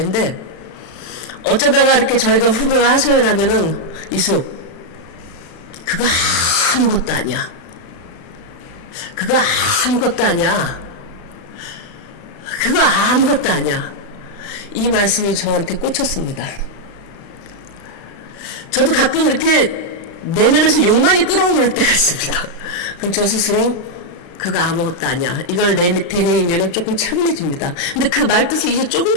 근데 어쩌다가 이렇게 저희가 후배가 하소연 하면은 이수 그거 아무것도 아니야. 그거 아무것도 아니야. 그거 아무것도 아니야. 이 말씀이 저한테 꽂혔습니다. 저도 가끔 이렇게 내면에서 욕망이 끓어오를 때가 있습니다. 그럼 저 스스로 그거 아무것도 아니야. 이걸 되뇌이면 조금 차분해집니다. 근데 그 말뜻을 이제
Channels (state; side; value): late; right; 35 ms